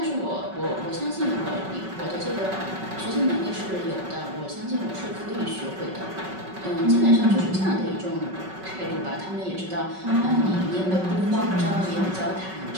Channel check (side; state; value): left; late; 5.3 ms